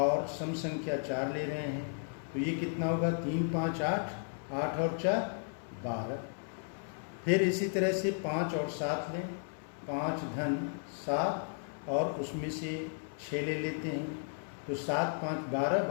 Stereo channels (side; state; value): right; silent; 55 dB below the other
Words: सम संख्या 4 ले रहे हैं, तो ये कितना होगा, 3 5 8, 8 और 4 12। फिर इसी तरह से 5 और 7 लें, 5 धन 7 और उसमें से 6 ले लेते हैं, तो 7 5 12,